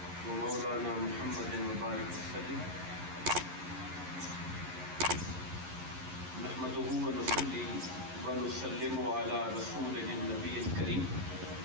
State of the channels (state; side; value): late; left; 11 ms